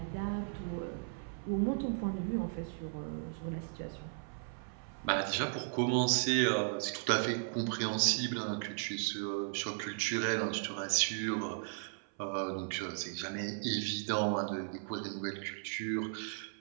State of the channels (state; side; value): silent; left; 54 dB below the other